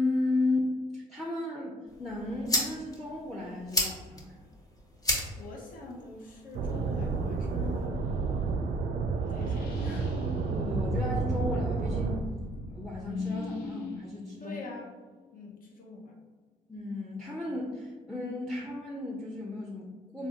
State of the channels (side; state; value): both; normal; correlation 0.59